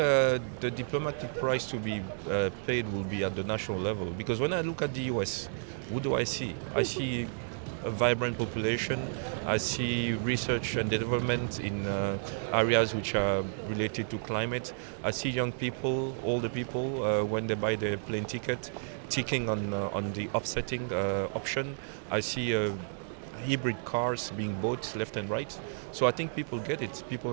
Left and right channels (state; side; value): silent; left; digital silence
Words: diplomatic price to be paid will be at the national level, because when I look at the US, what do I see? I see a vibrant population. I see research and development in areas which are related to climate. I see young people, older people, when they buy their plane ticket, ticking on the offsetting option. I see hybrid cars being bought left and right. So I think people get it. People